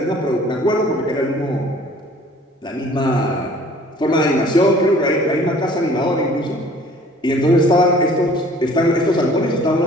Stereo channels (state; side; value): normal; both; correlation 0.51